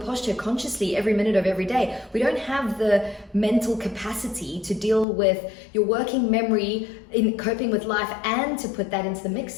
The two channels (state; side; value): drops out; right; at 5.1 s